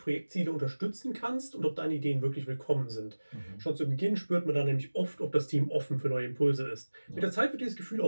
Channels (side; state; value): both; inverted; correlation -1.00